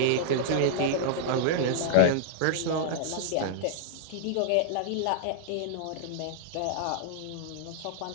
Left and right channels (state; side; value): different; both; correlation -0.01